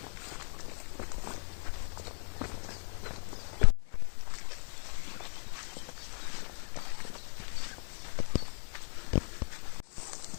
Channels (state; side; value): silent; right; 54 dB below the other